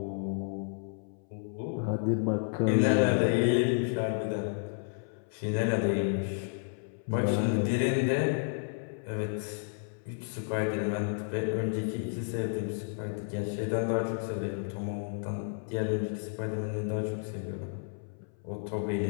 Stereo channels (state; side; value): silent; right; 57 dB below the other